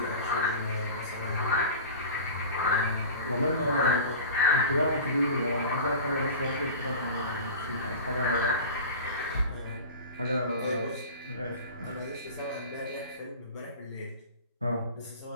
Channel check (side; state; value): both; inverted; correlation -0.34